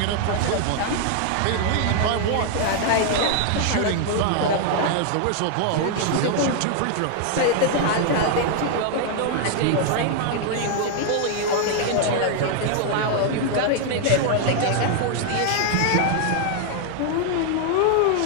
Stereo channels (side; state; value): both; different; correlation 0.00